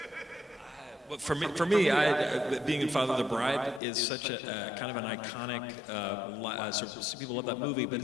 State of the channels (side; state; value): right; drops out; at 3.8 s